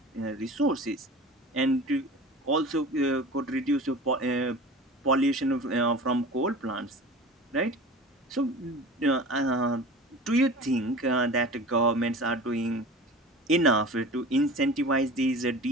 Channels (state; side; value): normal; both; correlation 0.37